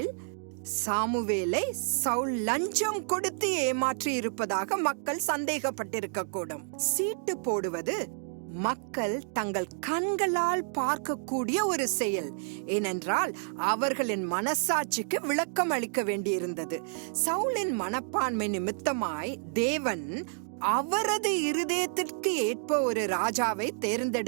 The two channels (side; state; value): left; silent; digital silence